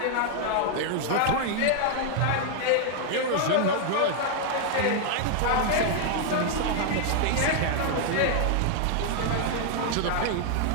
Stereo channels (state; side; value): different; both; correlation 0.00